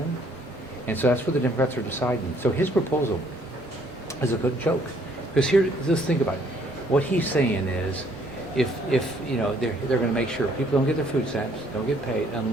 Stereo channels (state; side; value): normal; both; correlation 0.64